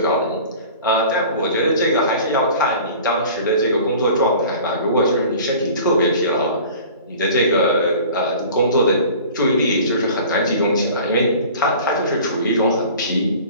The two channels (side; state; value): both; inverted; correlation -0.43